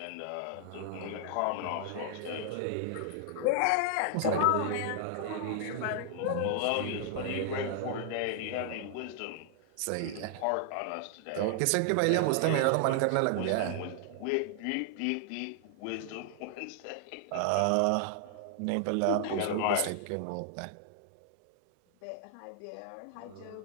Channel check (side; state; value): both; different; correlation -0.01